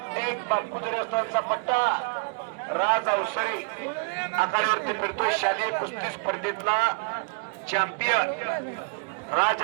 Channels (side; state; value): left; quieter; 34.7 dB